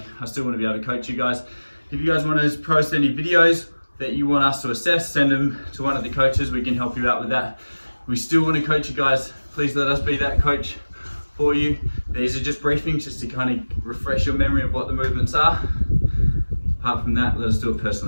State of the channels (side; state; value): both; inverted; correlation -1.00